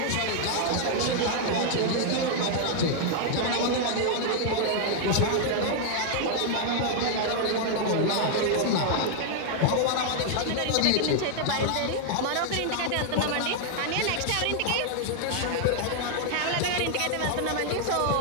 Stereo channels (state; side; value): different; both; correlation 0.00